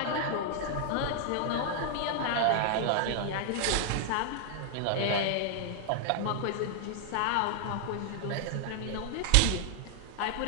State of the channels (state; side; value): different; both; correlation 0.00